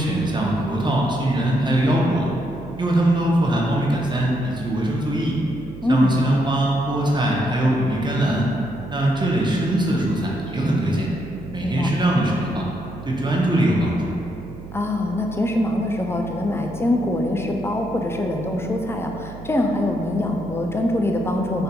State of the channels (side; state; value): right; noise; hum, 14 dB below the sound